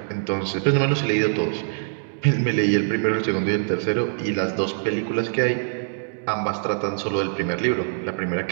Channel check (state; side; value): silent; left; digital silence